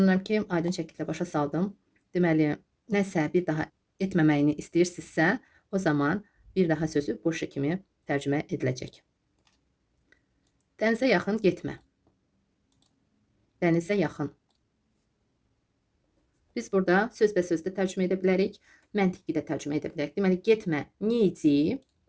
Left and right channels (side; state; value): both; identical; correlation 1.00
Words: ki, aydın şəkildə başa saldım. Deməli, nəsə bir daha etməməyini istəyirsinizsə, o zaman bir daha sözü больше kimi tərcümə ediləcək. Dənizə yaxın getmə. Dənizə yaxın. Biz burada sözbəsöz də tərcümə edə bilərik, məntiqi də tərcümə edə bilərik. Deməli, getmə, не иди,